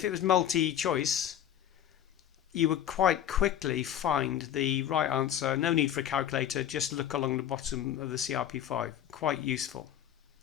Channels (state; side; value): quieter; right; 10.6 dB